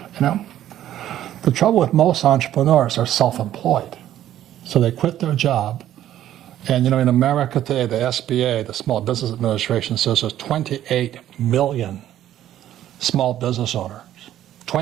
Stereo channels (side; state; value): left; quieter; 12.2 dB